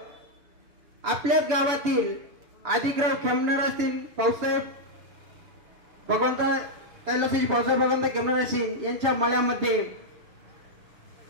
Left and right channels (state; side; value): late; left; 6.8 ms